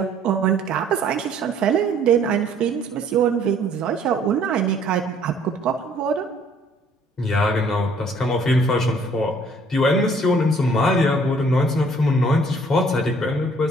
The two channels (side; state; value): both; normal; correlation 0.59